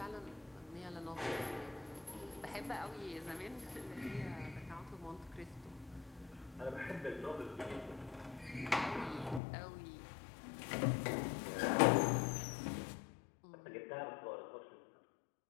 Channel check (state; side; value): drops out; right; at 9.4 s